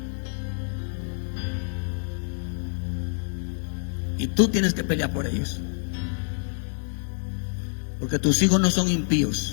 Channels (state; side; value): silent; right; digital silence